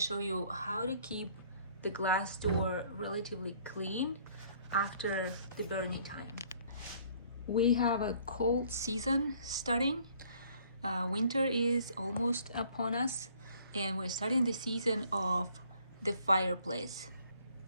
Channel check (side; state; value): both; inverted; correlation -0.59